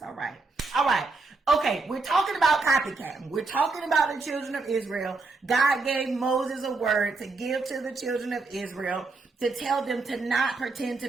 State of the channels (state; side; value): quieter; left; 3.7 dB